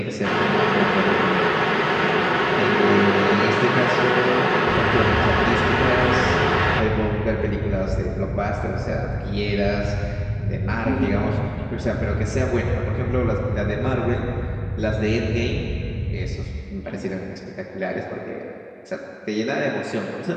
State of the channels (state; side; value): identical; both; correlation 1.00